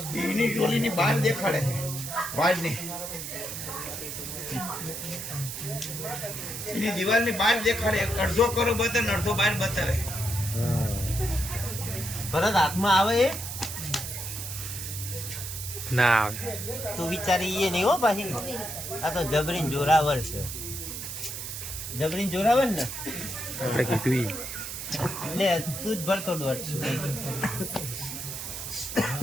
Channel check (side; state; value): right; noise; hiss, 7 dB below the sound